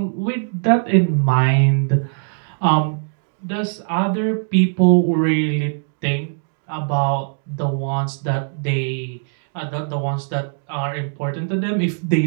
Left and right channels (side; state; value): left; silent; digital silence